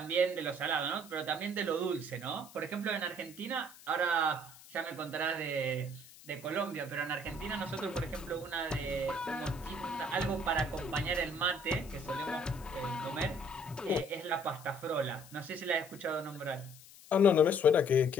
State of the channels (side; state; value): left; noise; hiss, 20 dB below the sound